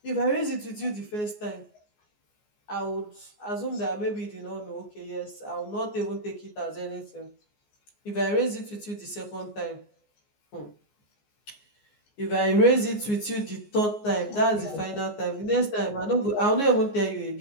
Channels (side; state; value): right; late; 14 ms